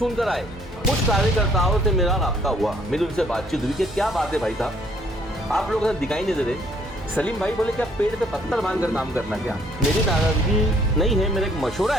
कर आए। कुछ कार्यकर्ताओं से मेरा राब्ता हुआ, मेरी उनसे बातचीत हुई कि क्या बात है भाई साहब, आप लोग दिखाई नहीं दे रहे। सलीम भाई बोले क्या पेड़ पे पत्थर बांध कर काम करना क्या? मेरी नाराजगी नहीं है, मेरा एक मशवरा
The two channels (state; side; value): normal; both; correlation 0.63